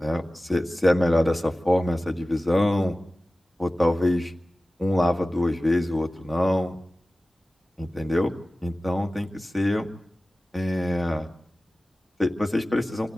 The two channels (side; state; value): both; normal; correlation 0.96